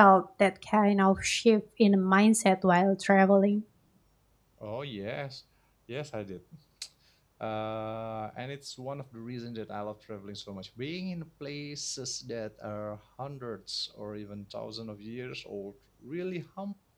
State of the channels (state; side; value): identical; both; correlation 1.00